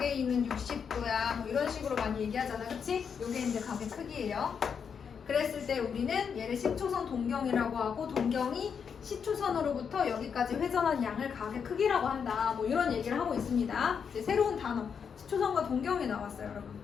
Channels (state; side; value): quieter; right; 6.8 dB